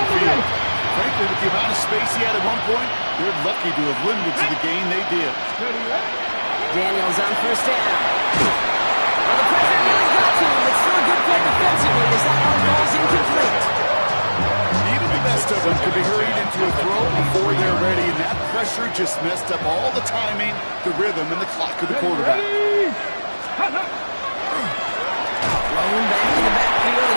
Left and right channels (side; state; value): both; inverted; correlation -1.00